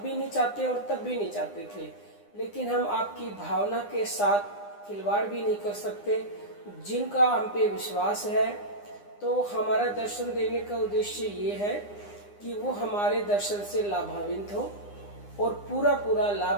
नहीं चाहते और तब भी नहीं चाहते थे, लेकिन हम आपकी भावना के साथ खिलवाड़ भी नहीं कर सकते। जिनका हम पे विश्वास है, तो हमारा दर्शन देने का उद्देश्य ये है कि वो हमारे दर्शन से लाभान्वित हो और पूरा पूरा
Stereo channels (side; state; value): right; late; 9.8 ms